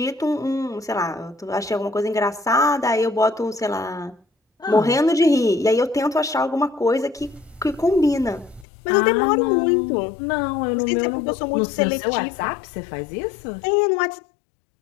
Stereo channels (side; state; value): right; drops out; at 8.7 s